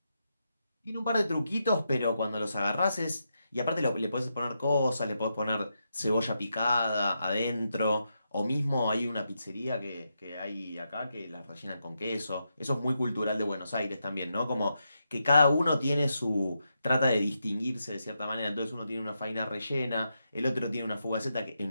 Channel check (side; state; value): both; inverted; correlation -0.84